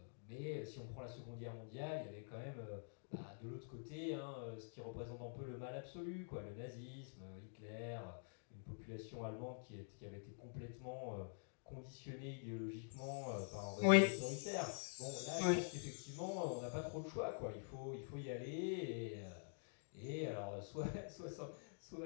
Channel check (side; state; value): right; silent; digital silence